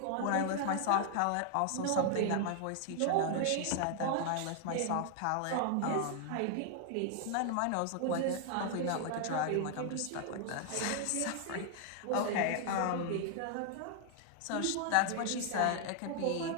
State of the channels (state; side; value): different; both; correlation 0.00